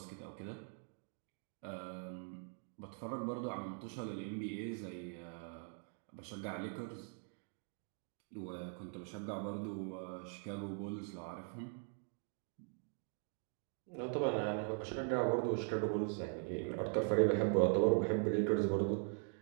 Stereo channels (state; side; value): silent; left; 50 dB below the other